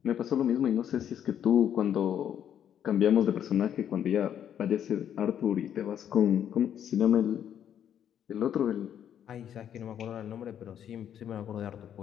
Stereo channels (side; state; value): right; quieter; 9.6 dB